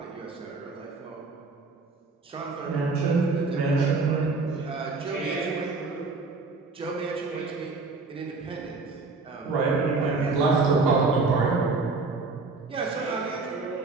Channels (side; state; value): left; quieter; 3.9 dB